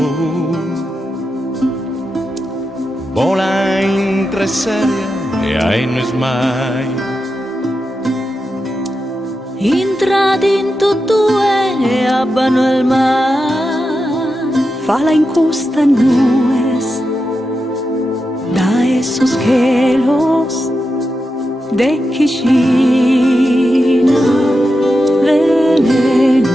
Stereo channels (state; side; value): normal; both; correlation 0.89